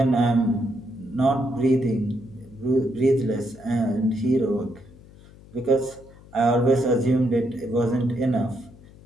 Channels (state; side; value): noise; left; hum, 22 dB below the sound